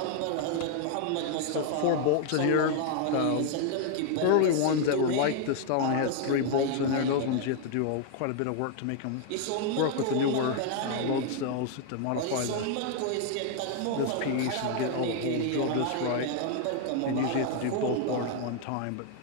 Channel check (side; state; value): both; different; correlation 0.00